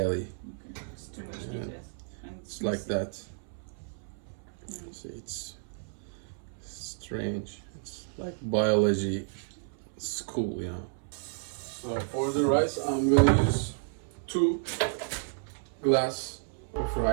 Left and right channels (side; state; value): left; silent; 56 dB below the other